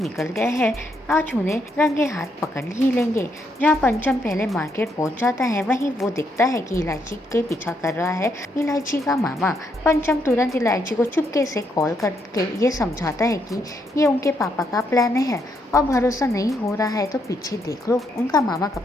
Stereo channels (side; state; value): both; normal; correlation 0.76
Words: गए हैं, आज उन्हें रंगे हाथ पकड़ ही लेंगे। जहाँ पंचम पहले मार्केट पहुंच जाता है वहीं वो दिखता है कि इलायची के पीछा कर रहा है इलायची का मामा। पंचम तुरंत इलायची को चुपके से कॉल करके ये समझाता है कि ये उनके पापा का प्लान है और भरोसा नहीं हो रहा है तो पीछे देख लो, उनका मामा कब